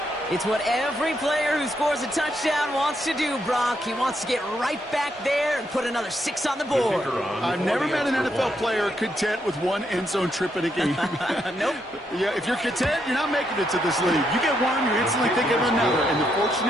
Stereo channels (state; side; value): normal; both; correlation 0.78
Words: It's what every player who scores a touchdown wants to do, Brock. He wants to get right back there and put another 6 on the board. I've never met an NFL player content with one end zone trip in a game. Nope. Yeah, if you're content, you're not making it to this league. You get one, you instantly think of another, and the